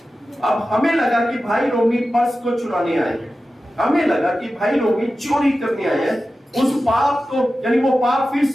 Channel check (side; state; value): both; normal; correlation 0.94